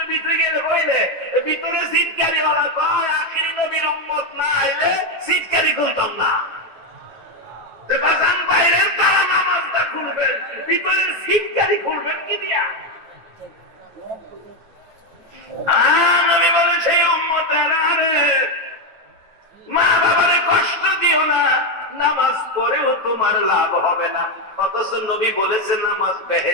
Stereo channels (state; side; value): late; left; 9.2 ms